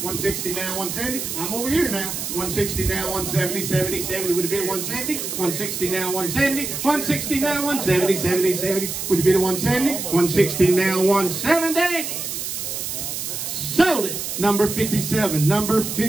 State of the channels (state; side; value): noise; right; hiss, 5 dB below the sound